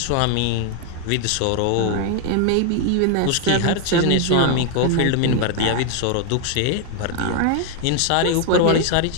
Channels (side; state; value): both; different; correlation 0.00